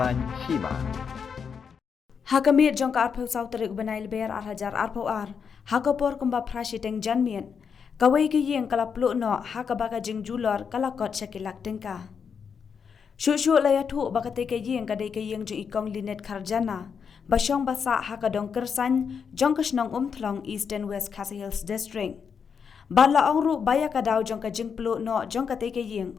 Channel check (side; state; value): right; quieter; 6.5 dB